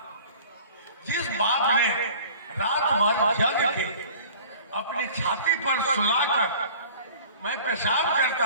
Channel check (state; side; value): inverted; both; correlation -0.45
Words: जिस बाप ने रात भर जग के अपनी छाती पर सुलाकर मैं पेशाब